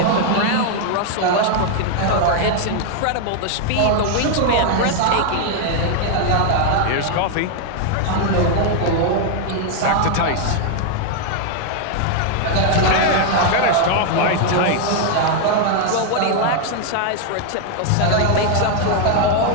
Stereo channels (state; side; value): different; both; correlation 0.00